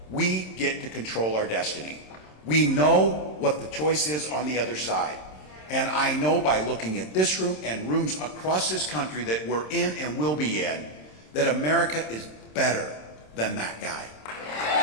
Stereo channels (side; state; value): right; late; 27 ms